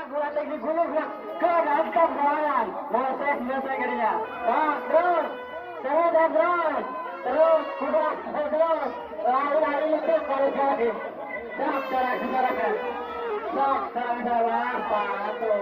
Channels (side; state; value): both; identical; correlation 1.00